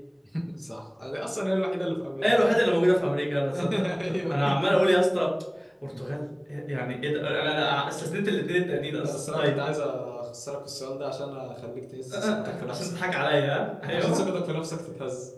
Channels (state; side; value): identical; both; correlation 1.00